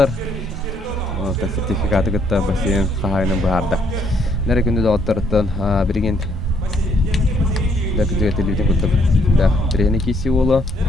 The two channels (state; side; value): normal; both; correlation 0.69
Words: Та сертификаты гытта бассейн хахайнын баарда. Нере күндү доктортон бирген дакыжыга телевизион куттук. Да, трени киси боло.